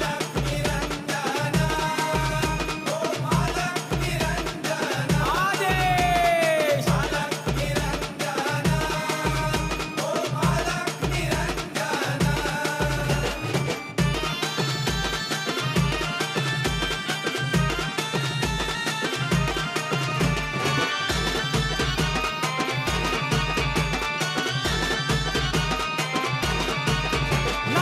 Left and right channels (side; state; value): both; identical; correlation 1.00